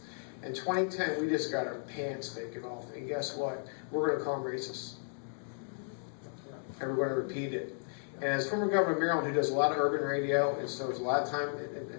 In 2010, we just got our pants taken off, and guess what? We're going to call them racist. And we're going to repeat it. And as former governor of Maryland, who does a lot of urban radio, and so there's a lot of time,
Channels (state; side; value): silent; right; digital silence